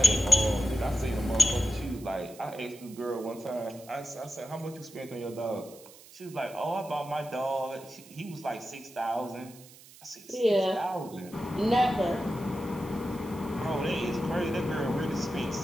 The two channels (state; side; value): noise; right; hiss, 20 dB below the sound